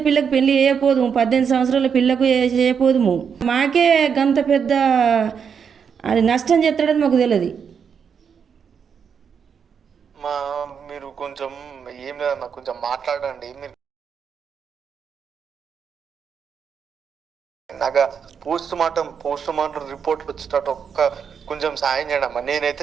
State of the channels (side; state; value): left; quieter; 6.9 dB